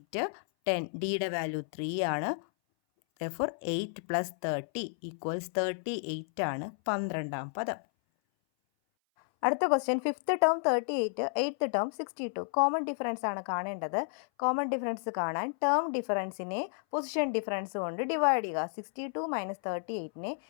10. ഡിയുടെ വാല്യൂ 3 ആണ്. therefore 8 + 30 = 38 ആണ് 12ാം പദം. അടുത്ത question, 5th term 38, 8th term 62. Common difference ആണ് കാണേണ്ടത്. കോമൺ ഡിഫറൻസ് കാണാൻ ടേം ഡിഫറൻസിനെ പൊസിഷൻ ഡിഫറൻസ് കൊണ്ട് ഡിവൈഡ് ചെയ്യുക. 62 - 38നെ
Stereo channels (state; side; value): silent; right; 57 dB below the other